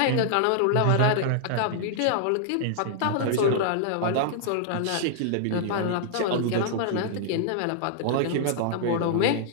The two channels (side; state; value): both; different; correlation -0.01